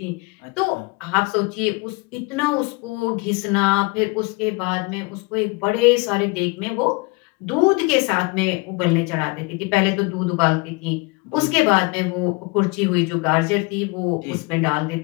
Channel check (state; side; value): quieter; right; 27.1 dB